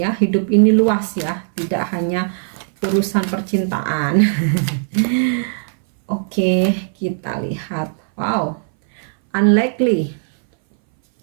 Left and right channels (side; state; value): left; silent; 63 dB below the other